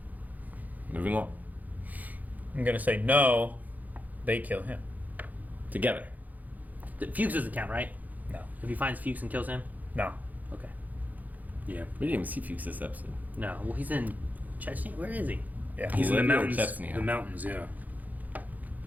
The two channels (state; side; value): late; left; 0.081 ms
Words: Moving on. I'm gonna say no. They kill him. Together. Fuchs doesn't count, right? No. If he finds Fuchs and kills him? No. Okay. Yeah. We didn't even see Fuchs this episode. No. Well, he's in Chechen. Where is he? Yeah. He's in the Bolivia or mountains. Chechnya? The mountains, yeah.